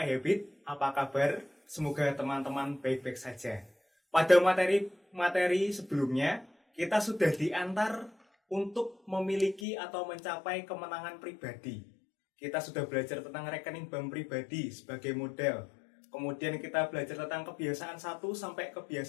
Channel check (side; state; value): right; drops out; at 9.7 s